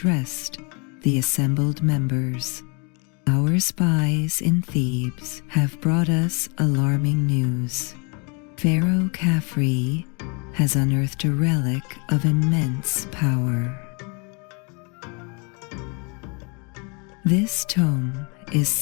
the assembled members. Our spies in Thebes have brought us alarming news. Pharaoh Khafre has unearthed a relic of immense power. This tome is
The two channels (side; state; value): right; quieter; 33.0 dB